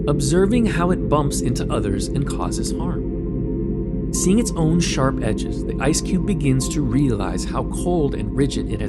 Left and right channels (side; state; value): both; identical; correlation 1.00